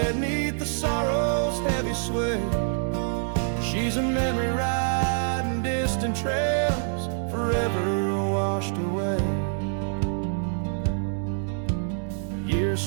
neath the sorrow's heavy sway. She's a memory riding distant trails, forever washed away.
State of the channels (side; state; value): left; silent; digital silence